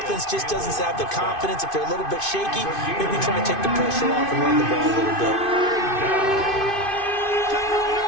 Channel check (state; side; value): late; right; 2.5 ms